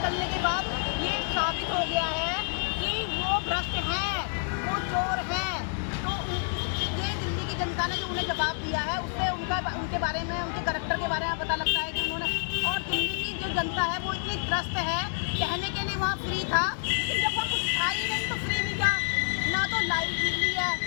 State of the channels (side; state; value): right; silent; 59 dB below the other